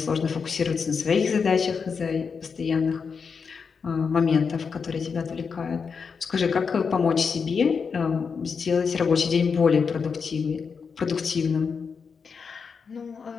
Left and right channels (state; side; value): quieter; right; 5.7 dB